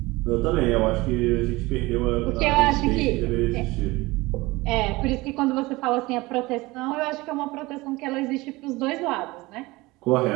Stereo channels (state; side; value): quieter; left; 21.4 dB